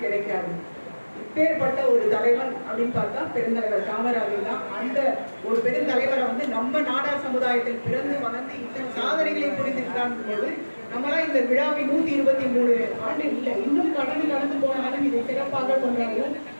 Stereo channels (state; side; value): inverted; both; correlation -1.00